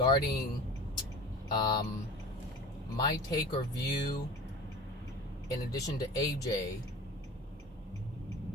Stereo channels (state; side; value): normal; both; correlation 0.38